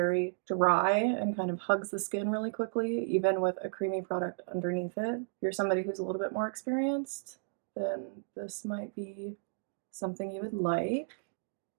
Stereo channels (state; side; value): silent; left; digital silence